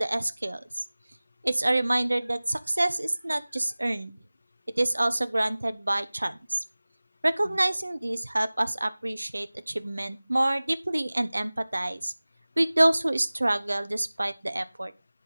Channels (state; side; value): inverted; both; correlation -0.99